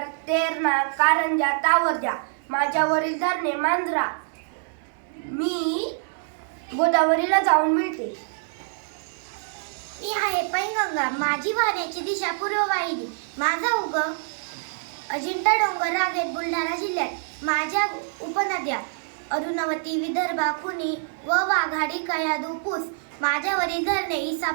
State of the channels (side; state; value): left; silent; 62 dB below the other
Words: तेरणा, कारंजा, तावरजा. माझ्यावरील धरणे मांजरा. मी गोदावरीला जाऊन मिळते. मी आहे पैनगंगा. माझी वाहण्याची दिशा पूर्व वाहिनी. माझा उगम अजिंठा डोंगर रांगेत बुलढाणा जिल्ह्यात. माझ्या उपनद्या अरुणवती, विदर्भा, खुनी व वाघाडी, कयाधू, पूस. माझ्यावरील धरणे